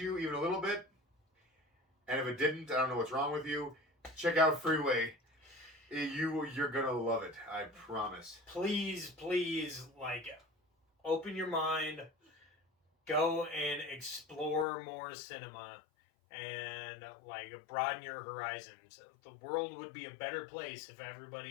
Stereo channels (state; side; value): drops out; right; at 14.7 s